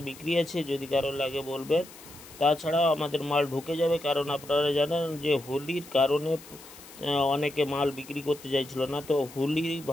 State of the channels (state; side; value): noise; left; hiss, 19 dB below the sound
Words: বিক্রি আছে, যদি কারোর লাগে বলবেন। তাছাড়াও আমাদের মাল ঢুকে যাবে, কারণ আপনারা জানেন যে হোলির কারণে অনেকে মাল বিক্রি করতে চাইছিল না। তো হোলি